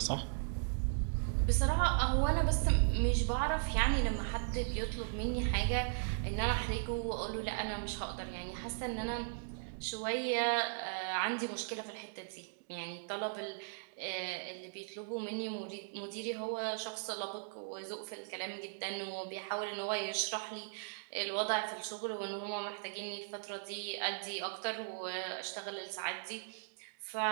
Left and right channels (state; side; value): silent; left; digital silence